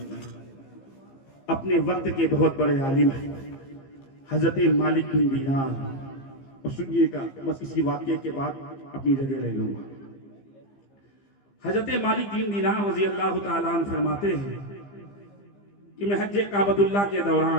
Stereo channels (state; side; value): late; right; 15 ms